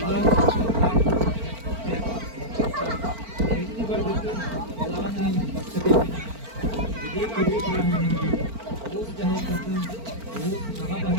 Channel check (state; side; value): late; left; 4.4 ms